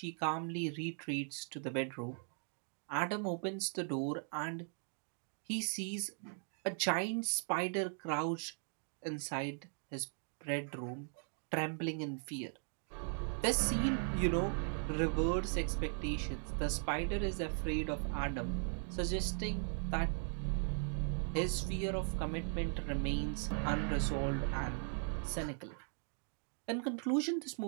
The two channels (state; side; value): silent; left; 52 dB below the other